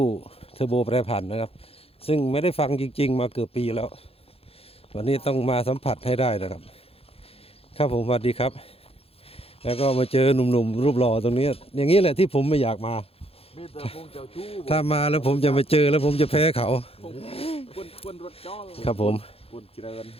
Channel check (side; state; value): right; late; 0.28 ms